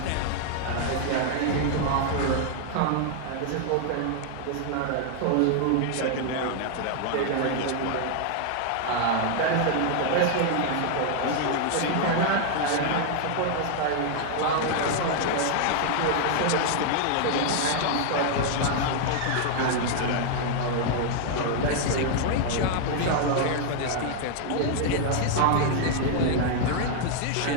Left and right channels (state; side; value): different; both; correlation 0.00